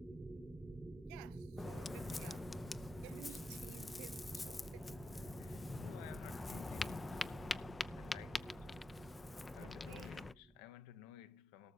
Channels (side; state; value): both; normal; correlation 0.89